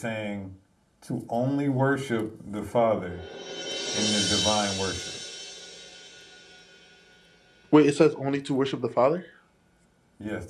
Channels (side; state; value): both; identical; correlation 1.00